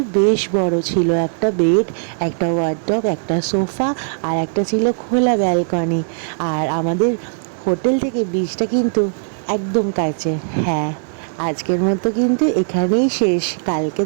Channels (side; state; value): left; silent; digital silence